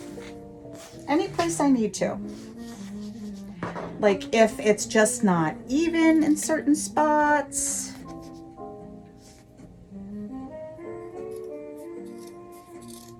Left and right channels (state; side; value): identical; both; correlation 1.00